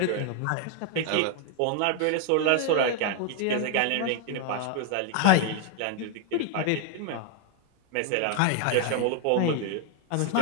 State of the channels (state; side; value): different; both; correlation 0.00